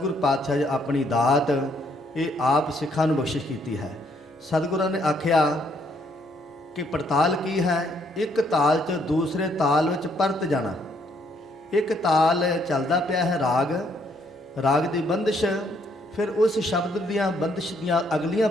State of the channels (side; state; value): both; normal; correlation 0.70